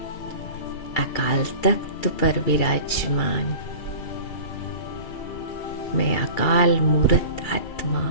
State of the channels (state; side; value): late; right; 2.8 ms